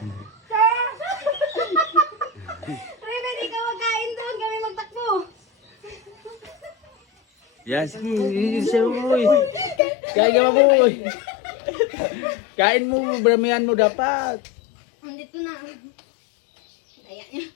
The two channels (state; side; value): drops out; right; at 9.8 s